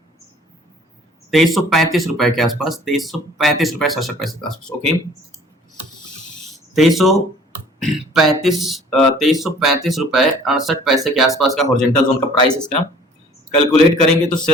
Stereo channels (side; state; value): both; normal; correlation 0.52